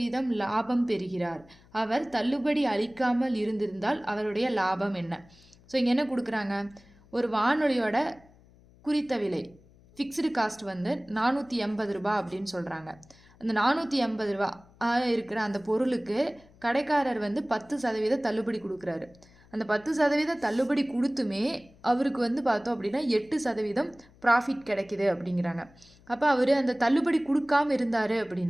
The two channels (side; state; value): left; noise; hum, 27 dB below the sound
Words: லாபம் பெறுகிறார். அவர் தள்ளுபடி அளிக்காமல் இருந்திருந்தால் அவருடைய லாபம் என்ன? ஸோ இங்கே என்ன கொடுக்குறாங்க? ஒரு வானொலியோட குறித்த விலை ஃபிக்ஸ்டு காஸ்ட் வந்து 480 ரூபா அப்படின்னு சொல்கிறாங்க. அந்த 480 ரூபா இருக்கிற அந்த பொருளுக்கு கடைக்காரர் வந்து 10% தள்ளுபடி கொடுக்குறாரு. அந்த 10% தள்ளுபடி கொடுத்துமே அவருக்கு வந்து பார்த்தோம் அப்படின்னா 8% ப்ராஃபிட் கிடைக்குது அப்படிங்கிறாங்க. அப்போ அவர் அந்த தள்ளுபடி கொடுக்காம இருந்தார்